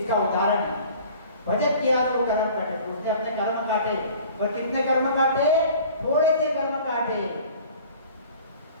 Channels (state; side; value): inverted; both; correlation -0.47